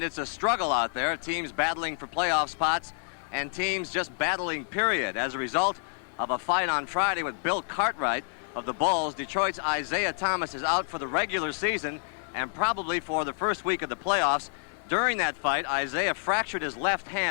it's a struggle out there. Teams battling for playoff spots and teams just battling, period. As a result of a fight on Friday with Bill Cartwright of the Bulls, Detroit's Isaiah Thomas is out for the regular season and probably for the first week of the playoffs. During that fight, Isaiah fractured his left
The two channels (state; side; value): silent; right; 59 dB below the other